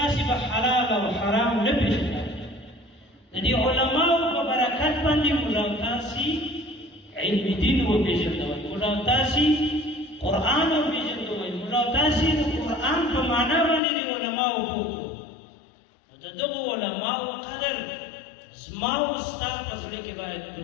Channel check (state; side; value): drops out; right; at 13.8 s